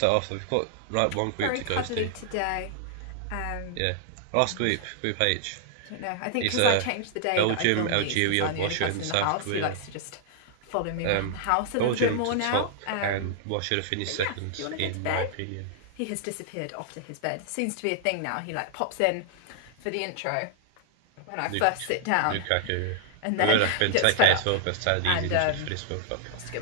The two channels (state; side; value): different; both; correlation 0.00